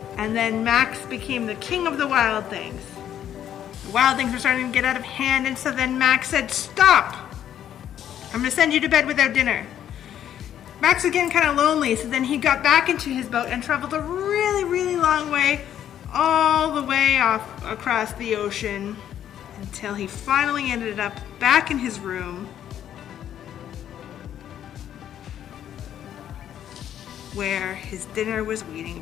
And then Max became the king of the wild things. The wild things were starting to get out of hand, and so then Max said, "Stop! I'm going to send you to bed without dinner." Max was getting kind of lonely, so then he got back into his boat and traveled a really long way, all the way off across the ocean, until he finally ended up back in his room, where his dinner was waiting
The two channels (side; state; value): right; quieter; 10.4 dB